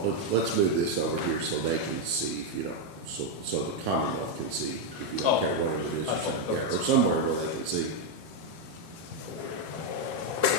let's move this over here so they can see if you don't, so the Commonwealth can see if you don't care whatever it is you're saying, yeah, or somewhere where they can see.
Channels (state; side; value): late; left; 6.6 ms